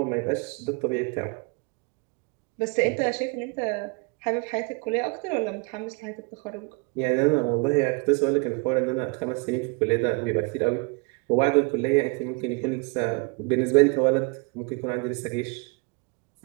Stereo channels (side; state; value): left; quieter; 30.6 dB